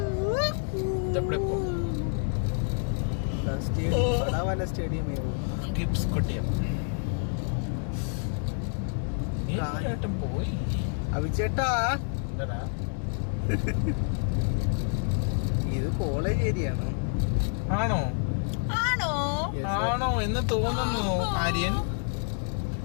പോയി. അവിച്ചേട്ടാ ഇത് കോളേജ് ഏരിയയാണോ? ആണോ എന്ന് തോന്നുന്നു ആര്യൻ.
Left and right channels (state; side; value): silent; right; 59 dB below the other